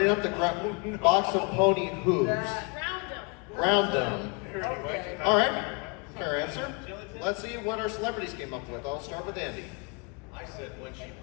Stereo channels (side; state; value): right; quieter; 30.7 dB